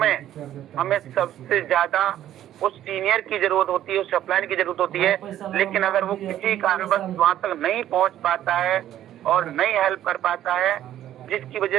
हमें सबसे ज्यादा उस सीनियर की जरूरत होती है, उस अपलाइन की जरूरत होती है। लेकिन अगर वो किसी कारणवश वहां तक नहीं पहुंच पाता है और नहीं हेल्प कर पाता है, जिसकी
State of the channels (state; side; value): quieter; left; 12.0 dB